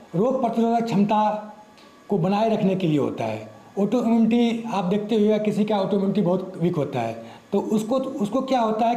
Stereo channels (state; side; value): identical; both; correlation 1.00